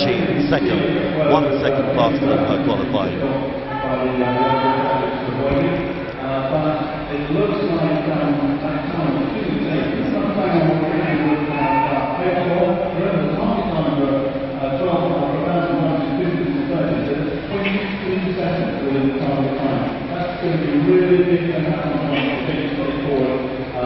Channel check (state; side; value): identical; both; correlation 1.00